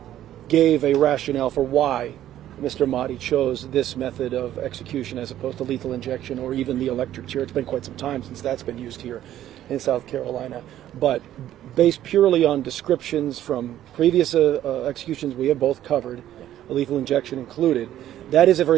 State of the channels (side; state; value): left; quieter; 12.3 dB